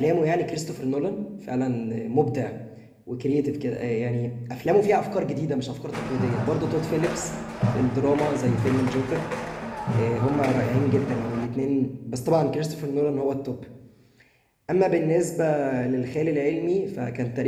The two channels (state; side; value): identical; both; correlation 1.00